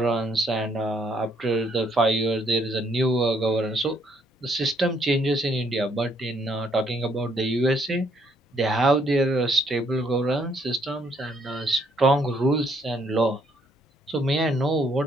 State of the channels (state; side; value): normal; both; correlation 0.69